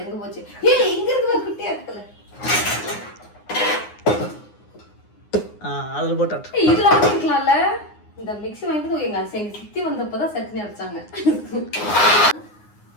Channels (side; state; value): right; late; 9.6 ms